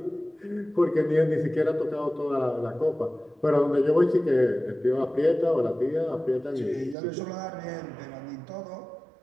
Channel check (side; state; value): left; drops out; at 7.0 s